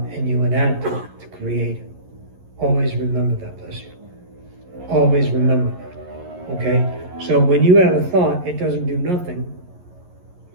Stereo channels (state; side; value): late; left; 11 ms